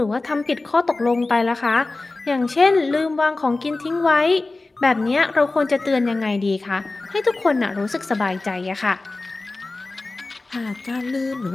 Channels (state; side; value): quieter; right; 3.3 dB